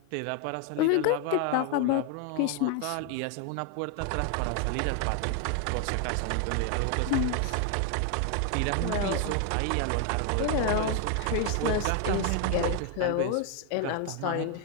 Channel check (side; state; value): both; different; correlation 0.01